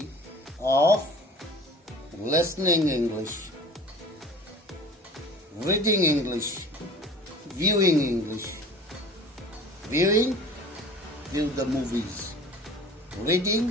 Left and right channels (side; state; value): both; normal; correlation 0.43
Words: of listening English, reading English, viewing English. Viewing, view the movies.